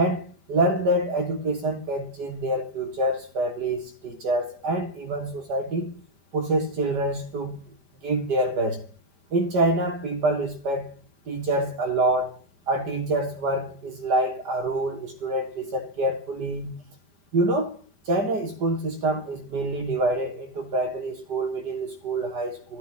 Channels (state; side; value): late; left; 5.1 ms